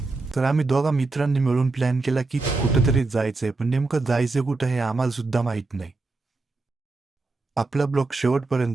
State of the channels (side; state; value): left; quieter; 3.5 dB